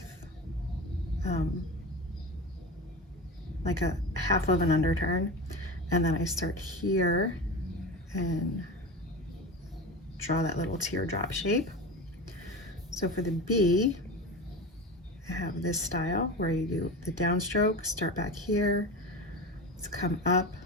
like a half of an underturn, and then I start here and draw that little teardrop shape. So for the B, I have this style where you do the downstroke, start back here, let's come up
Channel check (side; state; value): both; normal; correlation 0.27